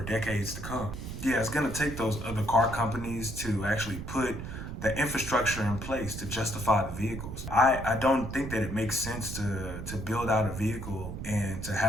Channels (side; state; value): right; noise; rumble, 7 dB below the sound